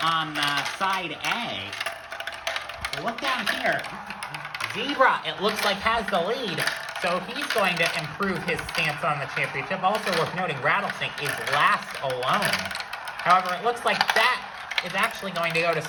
on side A. Look down here. Zebra, it looks like, has the lead, so he's going to improve his stance on the championship. Also worth noting, Rattlesnake is last alone. However, it looks like that is actually going to go to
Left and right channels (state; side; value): identical; both; correlation 1.00